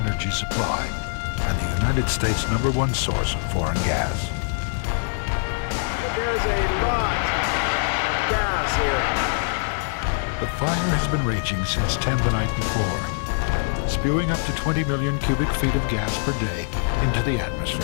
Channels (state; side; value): silent; right; digital silence